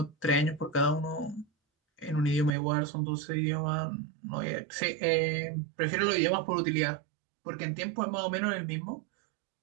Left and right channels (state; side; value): drops out; left; at 2.5 s